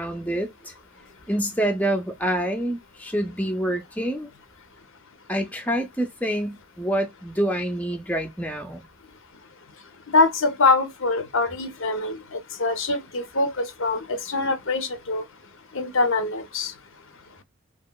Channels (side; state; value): both; normal; correlation 0.06